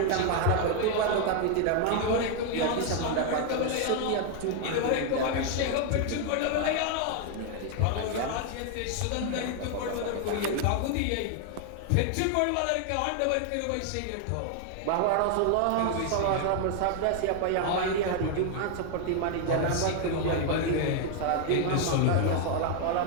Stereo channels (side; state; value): both; different; correlation 0.00